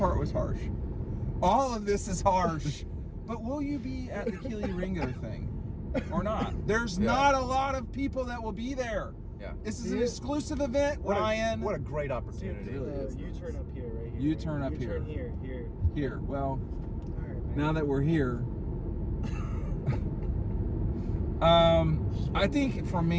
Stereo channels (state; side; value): identical; both; correlation 1.00